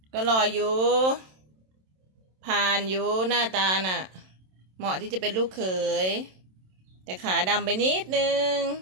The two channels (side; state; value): left; late; 27 ms